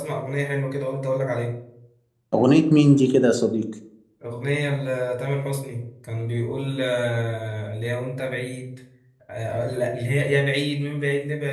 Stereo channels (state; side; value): identical; both; correlation 1.00